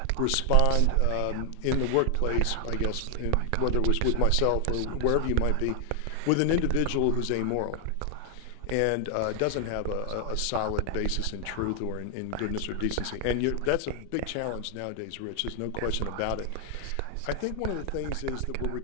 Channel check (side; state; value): both; different; correlation 0.00